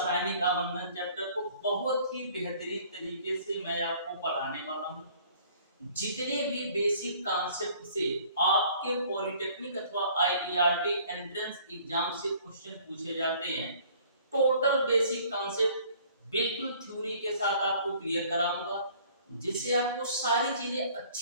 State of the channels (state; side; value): inverted; both; correlation -0.55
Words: आबंधन चैप्टर को बहुत ही बेहतरीन तरीके से मैं आपको पढ़ाने वाला हूँ। जितने भी बेसिक कॉन्सेप्ट से आपके पॉलिटेक्निक अथवा आईईआरटी एंट्रेंस एग्जाम से क्वेश्चन पूछे जाते हैं, टोटल बेसिक कॉन्सेप्ट बिल्कुल थ्योरी के साथ आपको क्लियर कराऊंगा, जिससे आपको सारी चीजें